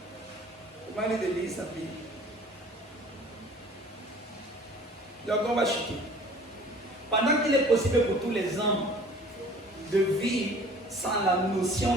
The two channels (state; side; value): normal; both; correlation 0.48